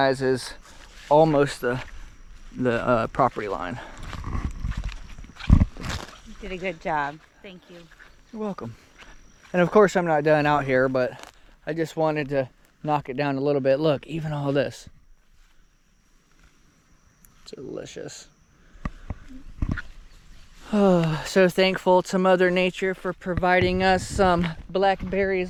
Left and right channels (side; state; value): both; identical; correlation 1.00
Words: is almost the property line. You did a good job. Thank you. You're welcome. And of course I'm not done out here, but I just wanted to knock it down a little bit. Look, even all this. Delicious. Oh, so thankful to Mother Nature for providing us some